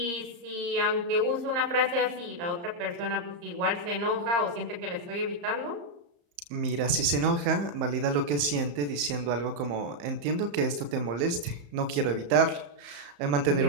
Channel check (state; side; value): late; left; 34 ms